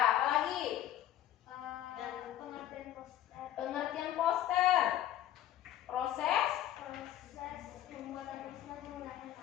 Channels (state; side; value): quieter; right; 12.4 dB